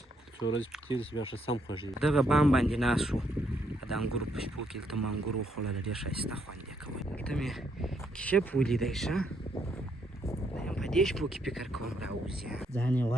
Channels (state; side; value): normal; both; correlation 0.74